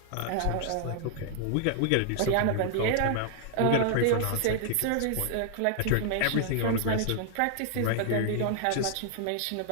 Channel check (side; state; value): both; different; correlation 0.00